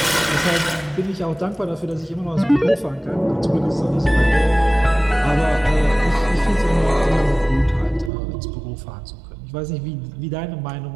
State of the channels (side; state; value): left; drops out; at 8.1 s